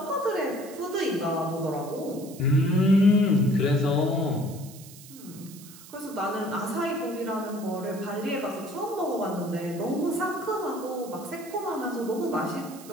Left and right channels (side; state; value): right; noise; hiss, 18 dB below the sound